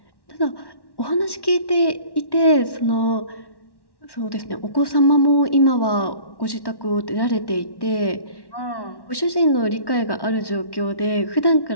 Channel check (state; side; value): late; right; 1.1 ms